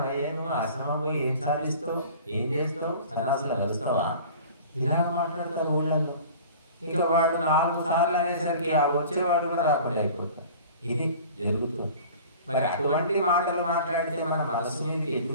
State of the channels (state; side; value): inverted; both; correlation -0.43